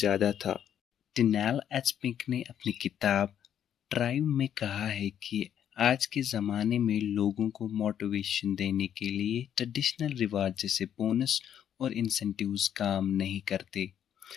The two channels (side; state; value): right; quieter; 9.6 dB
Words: था। डिनेल एचपिंक ने अपनी किताब ड्राइव में कहा है कि आज के ज़माने में लोगों को मोटिवेशन देने के लिए ट्रेडिशनल रिवार्ड जैसे बोनस और इंसेंटिव्स काम नहीं करते।